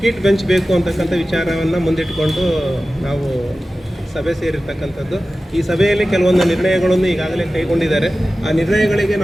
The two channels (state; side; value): normal; both; correlation 0.95